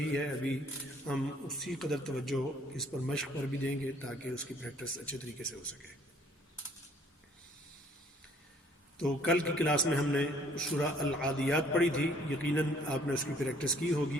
ہے، ابھی ہم اسی قدر توجہ اس پر مشق پر بھی دیں گے تاکہ اس کی پریکٹس اچھے طریقے سے ہو سکے. تو کل کی کلاس میں ہم نے سورہ العادیات پڑھی تھی، یقیناً آپ نے اس کی پریکٹس کی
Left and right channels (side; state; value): both; normal; correlation 0.59